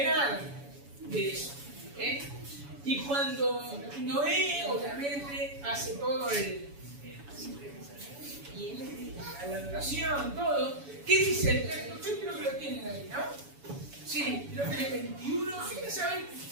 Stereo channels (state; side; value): late; left; 7.1 ms